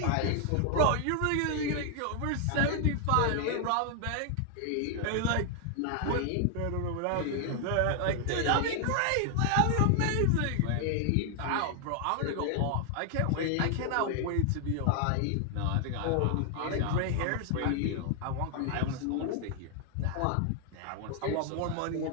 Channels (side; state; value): both; different; correlation 0.00